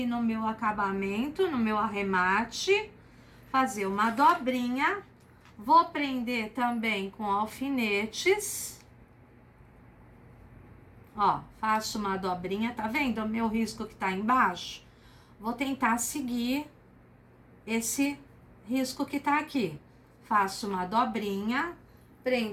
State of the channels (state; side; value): identical; both; correlation 1.00